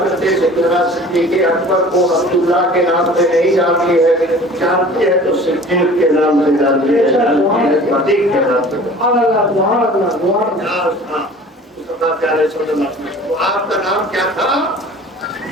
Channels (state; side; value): normal; both; correlation 0.45